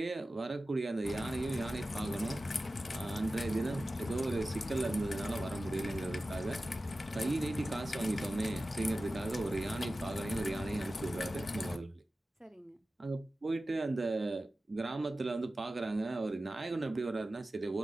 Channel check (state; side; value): normal; both; correlation 0.95